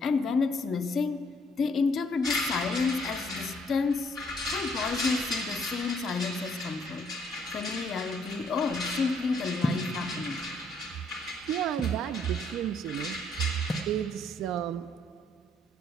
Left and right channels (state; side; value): normal; both; correlation 0.67